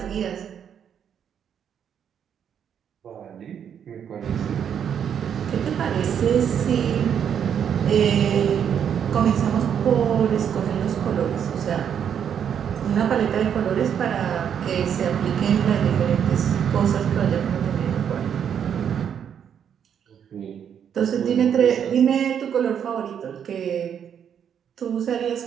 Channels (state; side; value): quieter; left; 8.4 dB